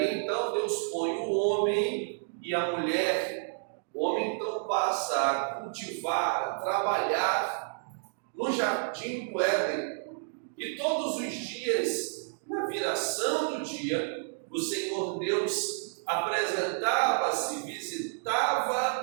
então Deus põe o homem e a mulher. O homem então passa a cultivar, a trabalhar no jardim do Éden, e todos os dias, na viração do dia, o Senhor Deus apresentava-se,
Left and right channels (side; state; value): left; silent; digital silence